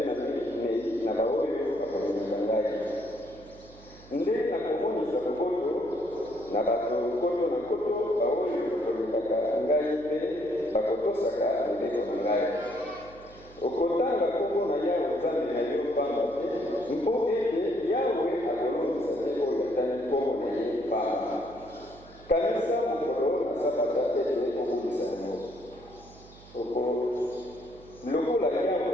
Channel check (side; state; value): right; noise; hum, 22 dB below the sound